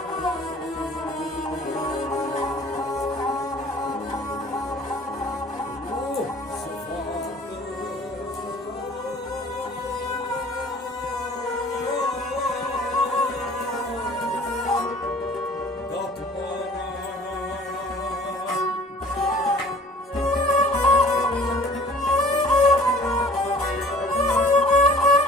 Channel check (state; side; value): normal; both; correlation 0.50